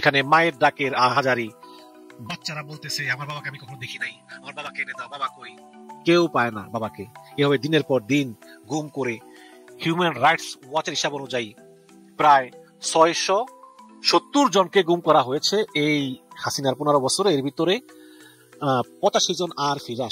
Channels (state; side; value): identical; both; correlation 1.00